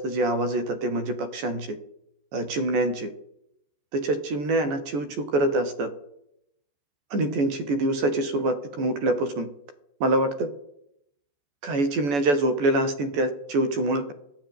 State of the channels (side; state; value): left; late; 14 ms